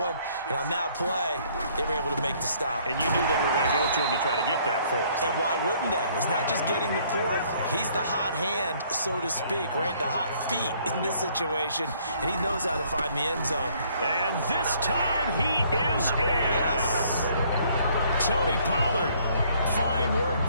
And on that play, they were able to make the stop. And you knew they were going to go to him to try to get that 4th. And why wouldn't they? It's not just getting the 4th. He's the hot hand, so to speak, right? The hot feet in this situation. And he knows how to find the end zone. And this time he is in. Yes. Tony Pollard. Fine work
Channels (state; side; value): inverted; both; correlation -0.63